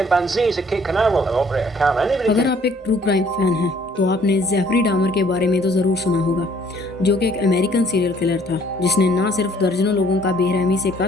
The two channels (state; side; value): normal; both; correlation 0.60